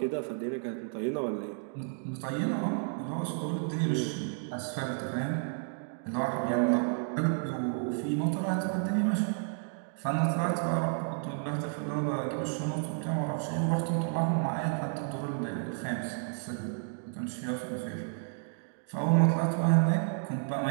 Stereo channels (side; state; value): left; silent; 56 dB below the other